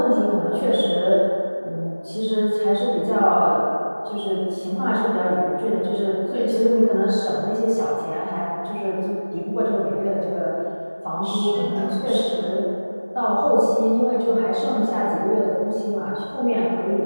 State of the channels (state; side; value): inverted; both; correlation -1.00